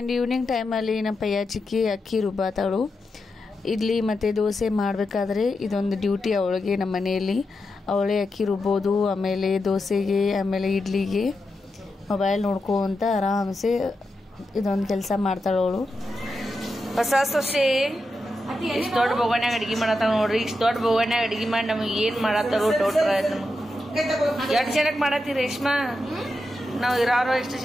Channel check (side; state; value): both; normal; correlation 0.88